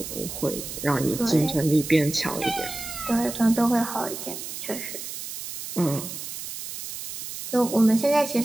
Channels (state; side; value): noise; right; hiss, 8 dB below the sound